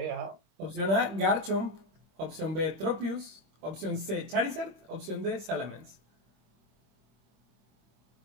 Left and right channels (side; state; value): left; late; 26 ms